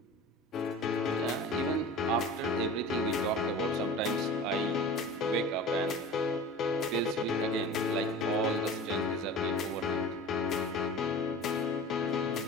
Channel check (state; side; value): normal; both; correlation 0.37